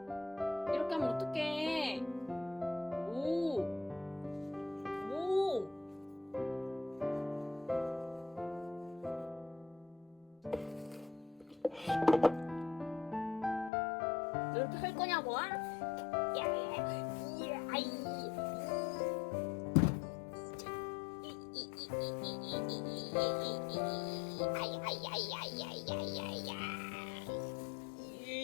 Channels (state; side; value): drops out; right; at 13.7 s